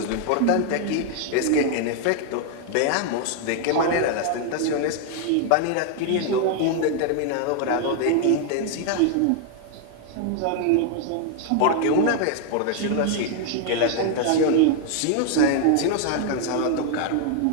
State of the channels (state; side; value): different; both; correlation 0.00